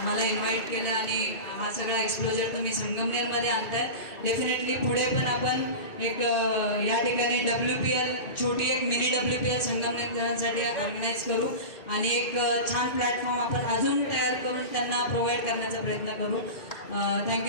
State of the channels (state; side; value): late; right; 2.7 ms